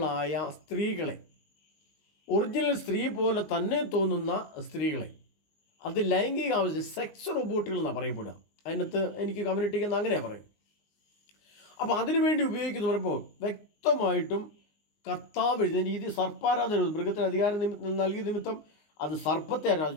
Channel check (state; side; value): late; right; 19 ms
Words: സ്ത്രീകളെ, ഒറിജിനൽ സ്ത്രീ പോലെ തന്നെ തോന്നുന്ന സ്ത്രീകളെ, അത് ലൈംഗിക ആവശ്യം സെക്സ് റോബോട്ടുകൾ എന്നാണ് പറയപ്പെടുക. അതിനകത്ത് എനിക്ക് കമ്മ്യൂണിറ്റിക്ക് അങ്ങനെ പറയും. അപ്പോൾ അതിനുവേണ്ടി ഉപയോഗിക്കുന്ന പറയുമ്പോൾ വ്യക്തമായിട്ടും കർത്താവ് എഴുതിയ രീതി സർപ്പാരാധന, മൃഗത്തിന് അധികാരം നൽകിയ നിമിത്തം അത് സർപ്പത്തെ